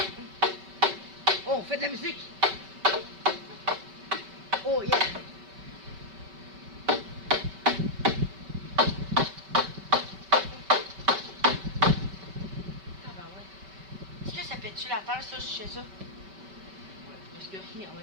Oh, on fait de la musique. Oh yeah. Ah ben ouais. Est-ce que ça pète-tu la terre, ça, je sais ça? Ouais, parce que en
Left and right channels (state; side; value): late; left; 5.2 ms